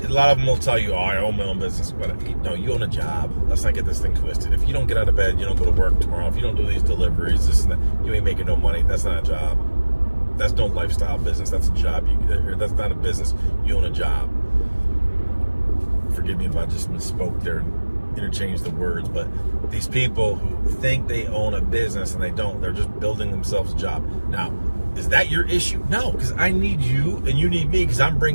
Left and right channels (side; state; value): both; inverted; correlation -1.00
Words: lot of them will tell you, oh, I own my own business. But no, you own a job. Let's not get this thing twisted. If you don't get out of bed, you don't go to work tomorrow. If you don't do these deliveries, this and that, you ain't making no money. That's not a job. That's no lifestyle business. That's a job. That's not a business. You own a job. Forgive me if I just misspoke there and interchanged the words, but these people who think they own a business and they don't, they're just building themselves a job. Now, is that your issue? No, because I need you and you need me, because I'm